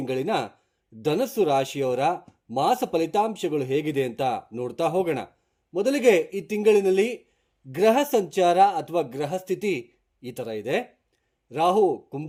ಧನಸ್ಸು ರಾಶಿಯವರ ಮಾಸ ಫಲಿತಾಂಶಗಳು ಹೇಗಿದೆ ಅಂತ ನೋಡ್ತಾ ಹೋಗೋಣ. ಮೊದಲಿಗೆ ಈ ತಿಂಗಳಿನಲ್ಲಿ ಗ್ರಹ ಸಂಚಾರ ಅಥವಾ ಗ್ರಹ ಸ್ಥಿತಿ ಈ ಥರ ಇದೆ. ರಾಹು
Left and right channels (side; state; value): both; identical; correlation 1.00